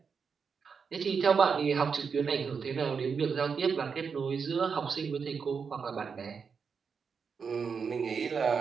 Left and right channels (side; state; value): left; quieter; 5.9 dB